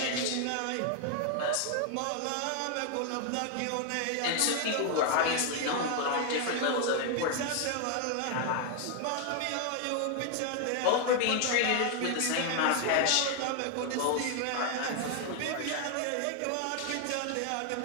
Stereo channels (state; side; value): different; both; correlation 0.00